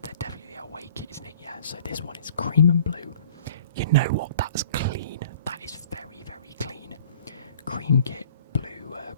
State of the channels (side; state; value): both; inverted; correlation -0.51